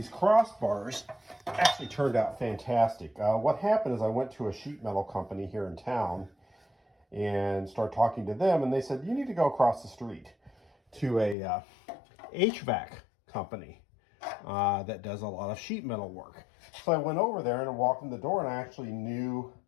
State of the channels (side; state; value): right; drops out; at 11.4 s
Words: actually turned out fantastic. What happened is I went to a sheet metal company here in town and started talking to them, and they said, you need to go across the street to a HVAC company that does a lot of sheet metal work. So I went over there and I walked in the door, and I actually knew